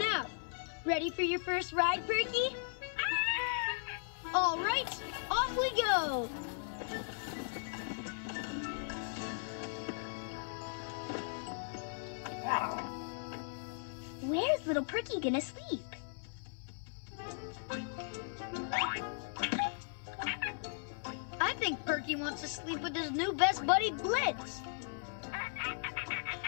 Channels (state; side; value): silent; right; 53 dB below the other